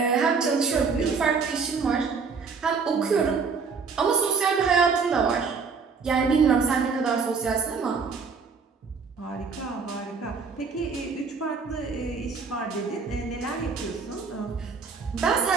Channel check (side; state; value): left; quieter; 5.2 dB